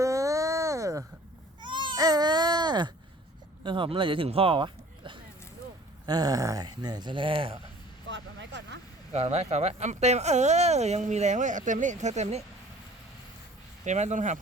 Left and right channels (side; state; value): both; normal; correlation 0.50